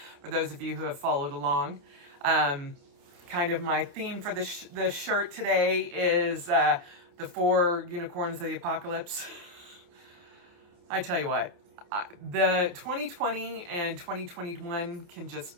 for those of you who have followed along. Kind of my theme for the shirt today is the 4 unicorns of the apocalypse. I tell you what, the 2020 and 2021 can just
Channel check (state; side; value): late; left; 28 ms